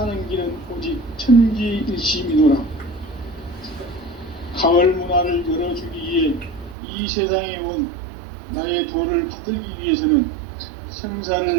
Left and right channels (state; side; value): drops out; left; at 6.8 s